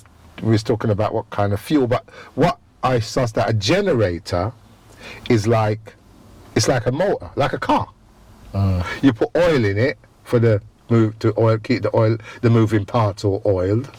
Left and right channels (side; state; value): both; identical; correlation 1.00